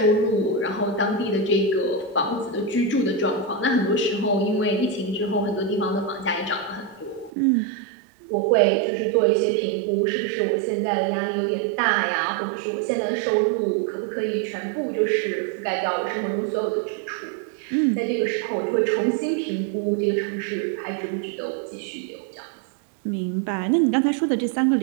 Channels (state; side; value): drops out; left; at 7.3 s